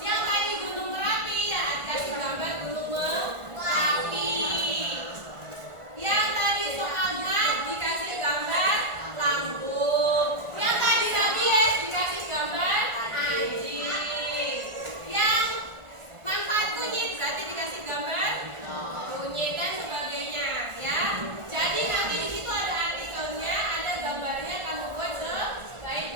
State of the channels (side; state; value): left; late; 1.4 ms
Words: tadi Gunung Merapi ya, kasih gambar Gunung Merapi. Yang tadi soal mat dikasih gambar lambung. Yang tadi rabies dikasih gambar anjing. Yang manfaat kunyit berarti dikasih gambar kunyit dan sebagainya ya. Jadi nanti di situ ada artikelnya, ada gambarnya, kamu buat sebaik